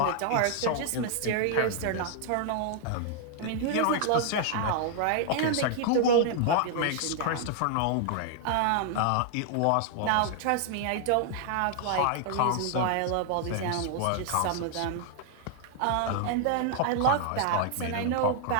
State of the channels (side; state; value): both; different; correlation 0.00